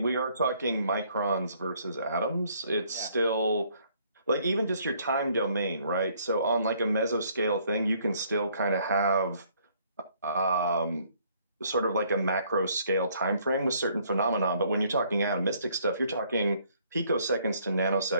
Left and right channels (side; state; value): both; inverted; correlation -0.64